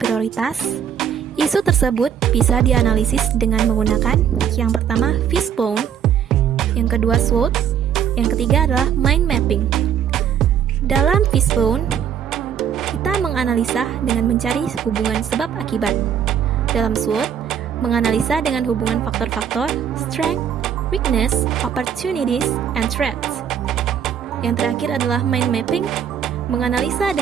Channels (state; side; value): quieter; left; 8.7 dB